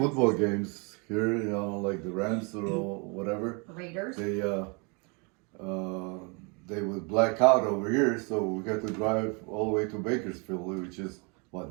games here, like the Rams or whatever, Raiders. They would black out over here, so we got to drive all the way to Bakersfield, which is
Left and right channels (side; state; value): left; quieter; 32.4 dB